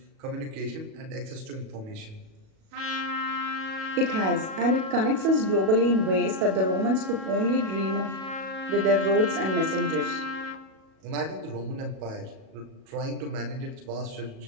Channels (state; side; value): late; left; 37 ms